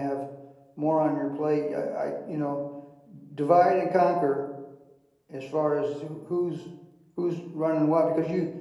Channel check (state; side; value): identical; both; correlation 1.00